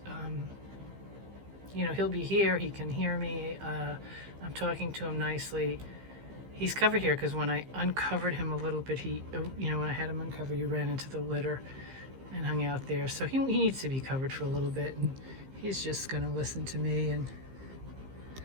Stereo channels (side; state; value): left; late; 15 ms